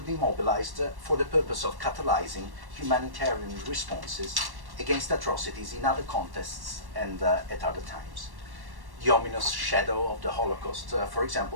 mobilized for the purpose of catalyzing humanitarian responses against atrocities in other contexts and at other times. The ominous shadow of the Holocaust, for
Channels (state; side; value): late; left; 1.1 ms